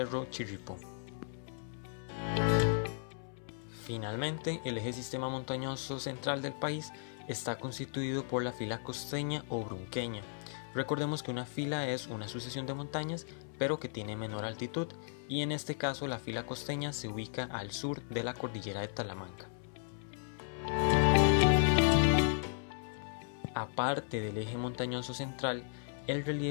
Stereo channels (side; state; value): right; silent; 54 dB below the other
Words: Chirripó. Finalmente, el eje sistema montañoso central del país está constituido por la fila costeña o brunqueña. Recordemos que una fila es una sucesión de montañas, pero que tiene menor altitud, y en este caso la fila costeña se ubica al sur de la cordillera de Talamanca. Aparte del eje montañoso central, el